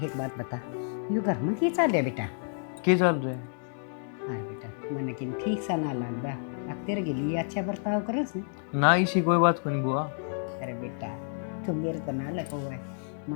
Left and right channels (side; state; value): right; silent; digital silence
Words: एक बात बता यू घर में क्या चल रहा बेटा? क्या चल रहा है? हाँ बेटा मैंने किन ठीक सा ना लगता अब तेरे के लिए अच्छा बर्ताव करस ना इसी कोई बात को नहीं बुआ। अरे बेटा तू मेरे तो ना लगा हुआ है